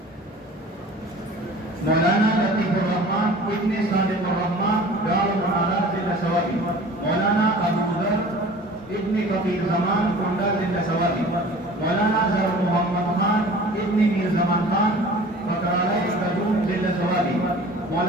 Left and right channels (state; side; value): normal; both; correlation 0.44